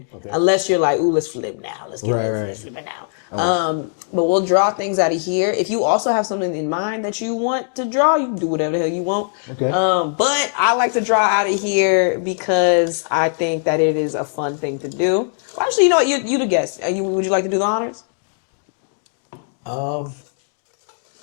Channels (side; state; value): right; silent; digital silence